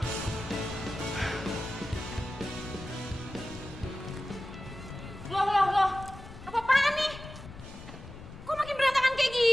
Loh. Apa-apaan nih? Kok makin berantakan kayak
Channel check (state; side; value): noise; left; rumble, 15 dB below the sound